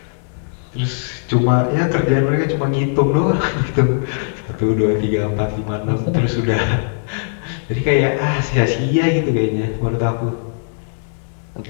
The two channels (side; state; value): right; silent; digital silence